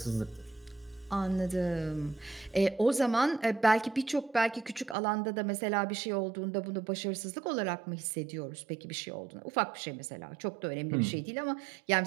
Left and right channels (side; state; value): left; drops out; at 5.0 s